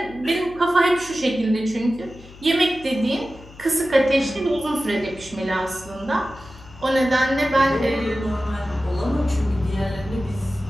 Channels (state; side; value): noise; left; hum, 20 dB below the sound